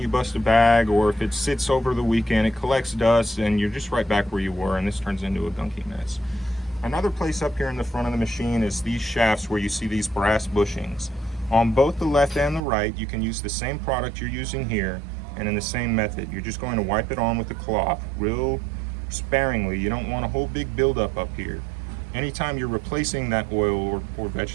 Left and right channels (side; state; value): left; drops out; at 12.6 s